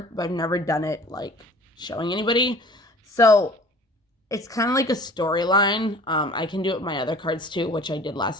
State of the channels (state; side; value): normal; both; correlation 0.47